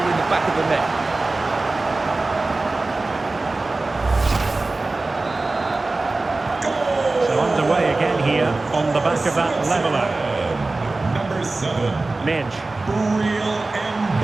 the back of the net. So underway again here on the back of that leveller. Number 7. Minge. Real and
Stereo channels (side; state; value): left; quieter; 3.3 dB